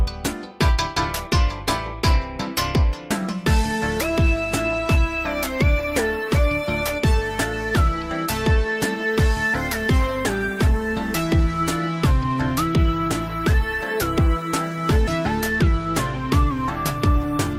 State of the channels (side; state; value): both; identical; correlation 1.00